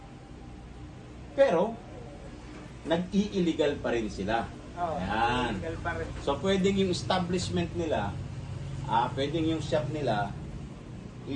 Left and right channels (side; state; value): both; identical; correlation 1.00